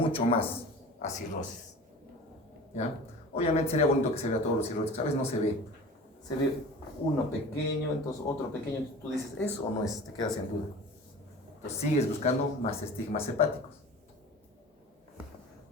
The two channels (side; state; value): both; normal; correlation 0.39